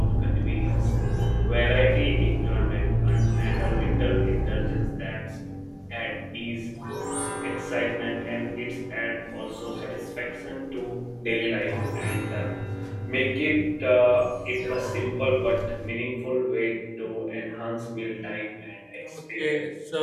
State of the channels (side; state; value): both; identical; correlation 1.00